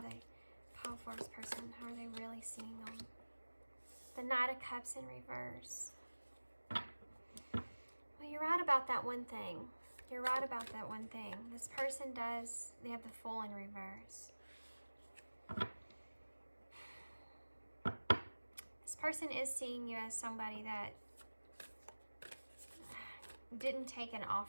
they, Pile 4's person, how are they really seeing them? The Knight of Cups in reverse. Well, you're right about that one thing. You're right about that one thing. This person does, they have the Fool in reverse. This person is seeing you as somebody that didn't take an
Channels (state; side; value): inverted; both; correlation -1.00